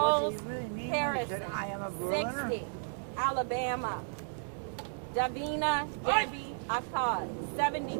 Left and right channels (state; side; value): silent; left; digital silence